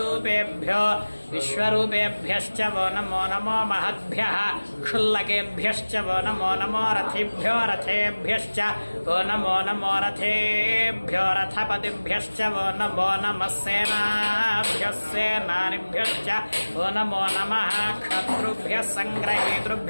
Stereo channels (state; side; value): inverted; both; correlation -1.00